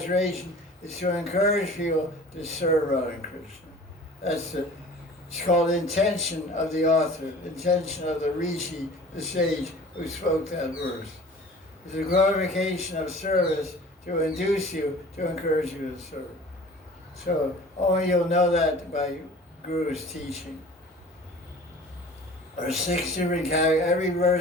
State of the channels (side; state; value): both; normal; correlation 0.44